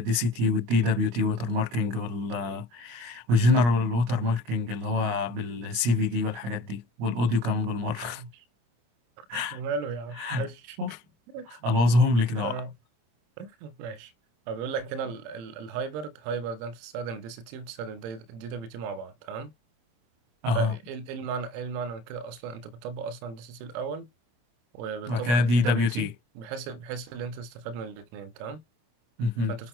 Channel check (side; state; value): left; late; 25 ms